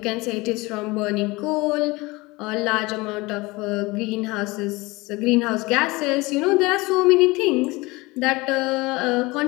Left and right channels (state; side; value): quieter; right; 22.9 dB